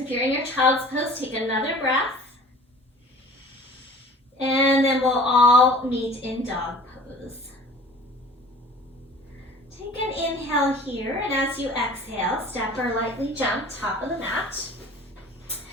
you're in your child's pose, take another breath. And then we'll all meet in dog pose. Take an inhale here, and as you exhale, step or lightly jump top of the mat.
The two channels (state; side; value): normal; both; correlation 0.45